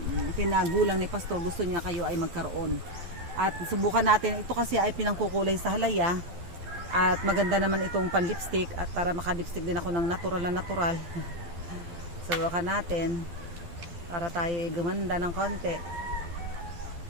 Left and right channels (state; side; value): late; left; 12 ms